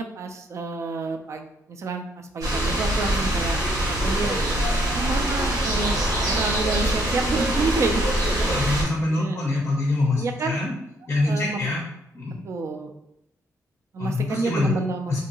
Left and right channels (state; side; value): normal; both; correlation 0.69